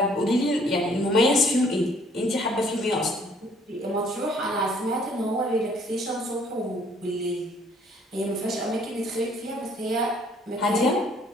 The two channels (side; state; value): both; normal; correlation 0.61